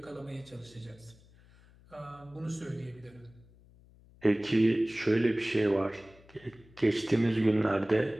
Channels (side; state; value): left; noise; hum, 26 dB below the sound